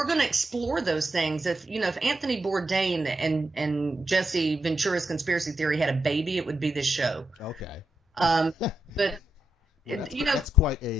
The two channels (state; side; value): normal; both; correlation 0.85